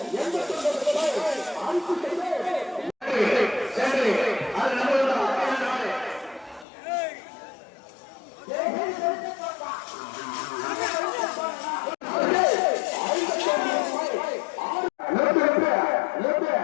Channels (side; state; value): right; drops out; at 6.7 s